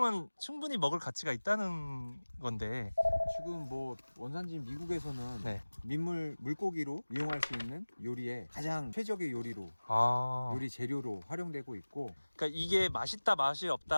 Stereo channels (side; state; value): both; inverted; correlation -1.00